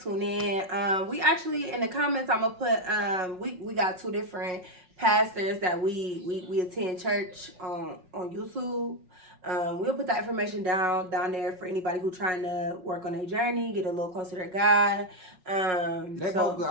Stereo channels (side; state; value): left; late; 5.4 ms